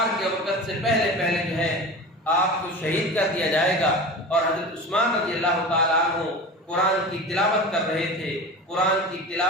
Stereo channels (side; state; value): both; normal; correlation 0.32